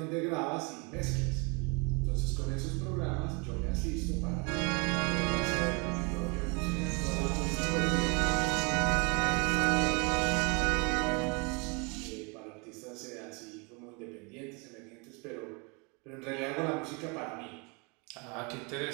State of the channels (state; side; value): quieter; left; 31.3 dB